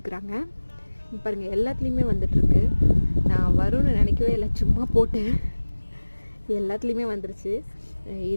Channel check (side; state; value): both; inverted; correlation -1.00